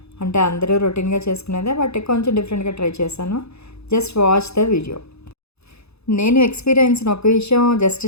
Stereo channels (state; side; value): late; right; 0.79 ms